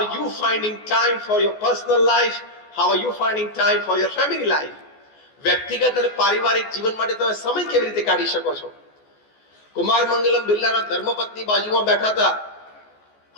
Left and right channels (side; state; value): right; late; 14 ms